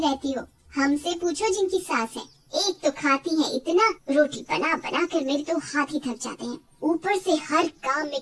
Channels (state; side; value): identical; both; correlation 1.00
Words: हो। हमसे पूछो जिनकी सास है, एक तो खाती है इतना, रोटी बना बना कर मेरे तो हाथ ही थक जाते हैं, ऊपर से हर काम में